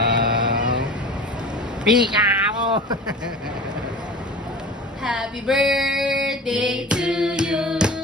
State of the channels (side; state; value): both; normal; correlation 0.36